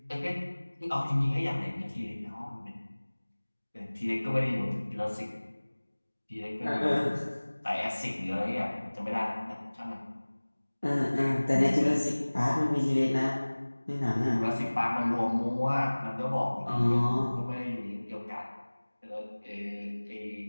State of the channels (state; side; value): inverted; both; correlation -1.00